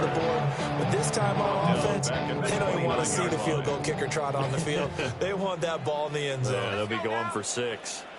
the board. But this time on offense, they don't even want to see the field goal kicker trot on the field. They want that ball in the end zone. Yeah, they'll be going for 6.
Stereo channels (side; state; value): both; identical; correlation 1.00